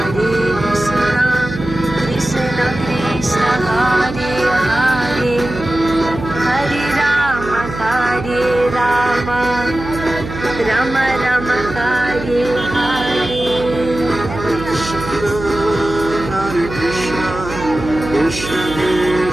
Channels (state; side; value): noise; right; hum, 9 dB below the sound